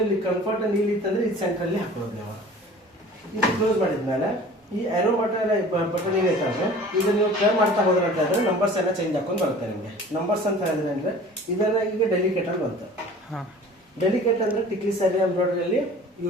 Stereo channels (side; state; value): both; normal; correlation 0.44